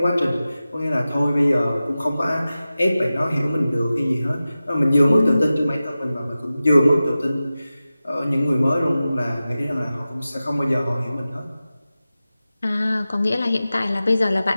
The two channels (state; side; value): inverted; both; correlation -0.95